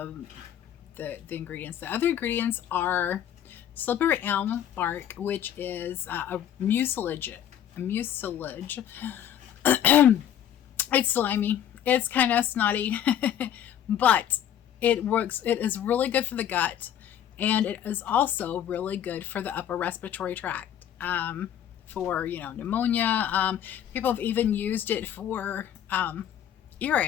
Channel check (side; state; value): right; quieter; 10.2 dB